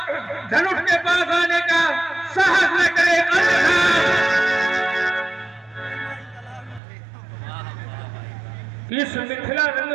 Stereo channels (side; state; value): left; drops out; at 6.8 s